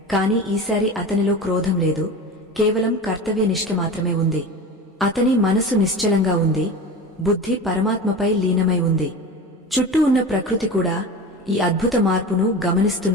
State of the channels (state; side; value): normal; both; correlation 0.30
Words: కాని ఈసారి అతనిలో క్రోధం లేదు, కేవలం కర్తవ్యనిష్ఠ మాత్రమే ఉంది. అతని మనసు నిశ్చలంగా ఉంది, బుద్ధి పరమాత్మపై లీనమై ఉంది. చుట్టూ ఉన్న ప్రకృతి కూడా ఈ అద్భుత మార్పును